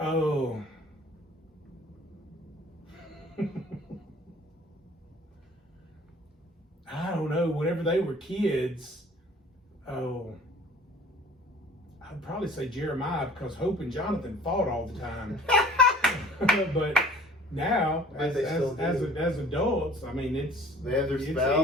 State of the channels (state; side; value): normal; both; correlation 0.49